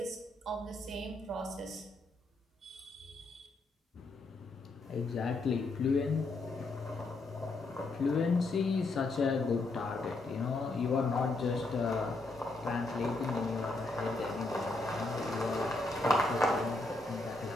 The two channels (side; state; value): right; quieter; 3.1 dB